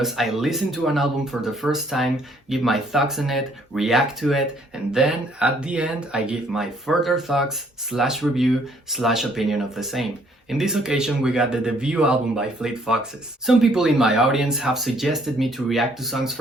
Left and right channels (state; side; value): normal; both; correlation 0.64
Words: I listen to an album for the first time, give my thoughts on it, react to it, and then at the end I give my further thoughts / review / opinion of the same. In this occasion we got the debut album by Fleet Foxes. Some people in my audience have suggested me to react to songs